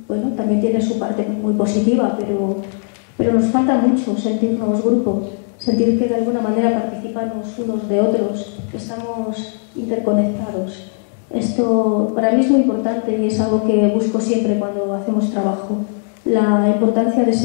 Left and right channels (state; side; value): silent; right; 67 dB below the other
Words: bueno, también tiene su parte muy positiva, pero nos falta mucho sentirnos grupo, sentir que de alguna manera participamos unos de otros, que estamos interconectados. Esto para mí es muy importante y es algo que busco siempre cuando hacemos trabajo, la importancia de